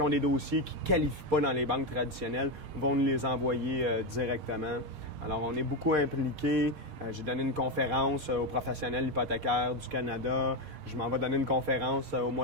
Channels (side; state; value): left; late; 6.6 ms